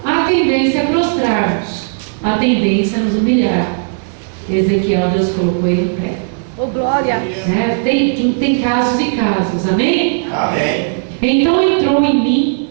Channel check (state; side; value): silent; left; digital silence